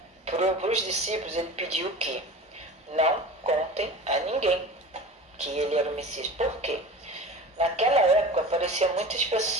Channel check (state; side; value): normal; both; correlation 0.36